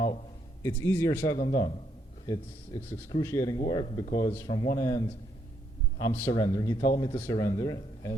it's easier said than done. It's excruciating work because from one end, I'm surrendering. He told me to surrender,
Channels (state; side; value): normal; both; correlation 0.74